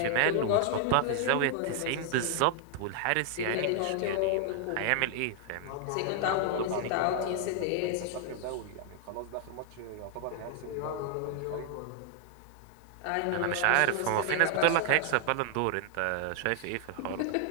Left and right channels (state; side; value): different; both; correlation 0.00